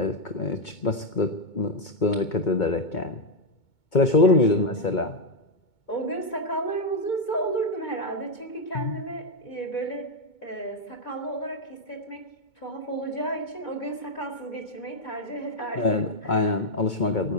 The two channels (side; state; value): right; late; 2.2 ms